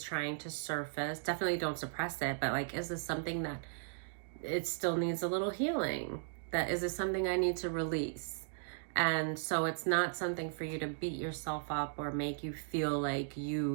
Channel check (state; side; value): silent; left; digital silence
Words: trying to surface? Definitely don't suppress it, but like, is this something that it still needs a little healing? Is this something I need to release? And so it's not something for you to beat yourself up or make you feel like